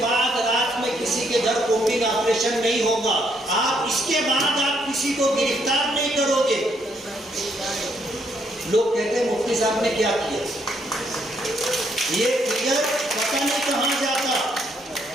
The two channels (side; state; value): both; normal; correlation 0.72